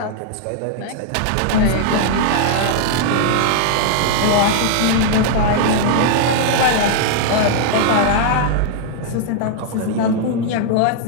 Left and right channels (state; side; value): different; both; correlation -0.01